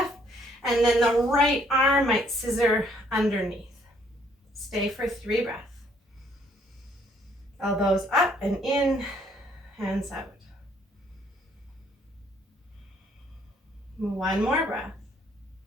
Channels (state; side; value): normal; both; correlation 0.65